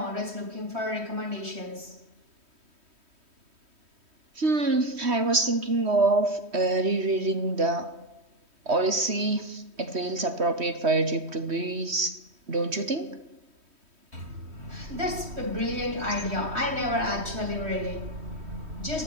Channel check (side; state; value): left; late; 3.1 ms